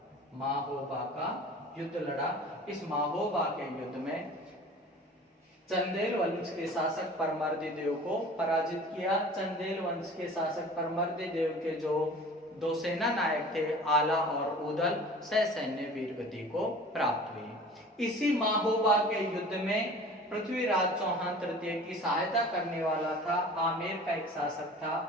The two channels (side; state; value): both; normal; correlation 0.43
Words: युद्ध लड़ा। इस महोबा के युद्ध में चंदेल वंश के शासक परमर्दी देव को पराजित किया। चंदेल वंश के शासक परमर्दी देव के जो 2 सेना नायक थे आला और ऊदल सैन्य वीर गति को प्राप्त हुई। इसी महोबा के युद्ध में पृथ्वीराज चौहान तृतीय की सहायता करने वाला था आमेर का एक शासक था